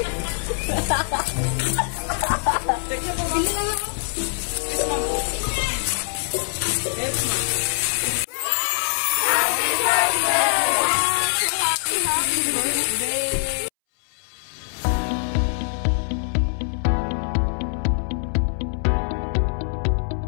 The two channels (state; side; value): silent; right; 63 dB below the other